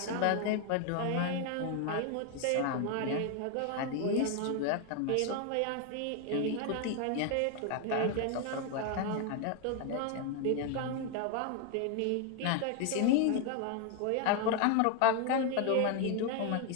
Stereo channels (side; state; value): both; different; correlation 0.01